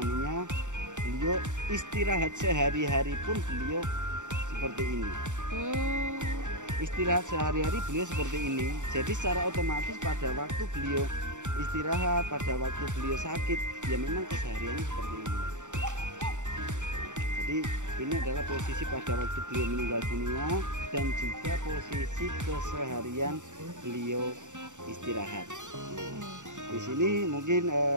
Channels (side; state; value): left; late; 0.85 ms